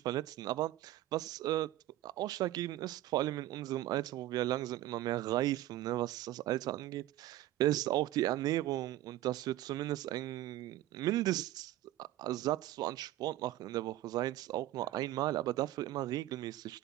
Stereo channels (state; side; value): quieter; left; 14.9 dB